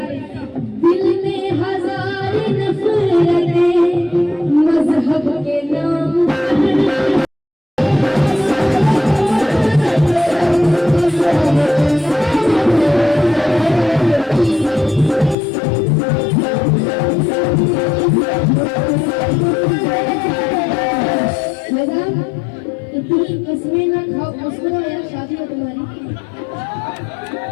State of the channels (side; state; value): right; drops out; at 15.4 s